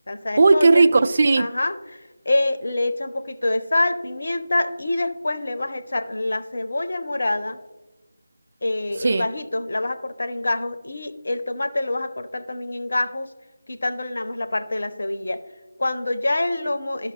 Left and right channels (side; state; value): both; inverted; correlation -0.94